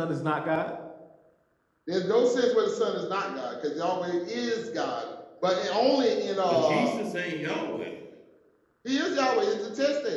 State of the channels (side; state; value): both; identical; correlation 1.00